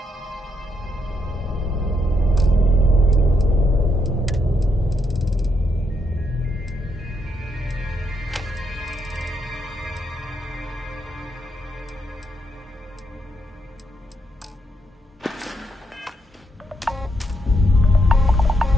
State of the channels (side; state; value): both; normal; correlation 0.78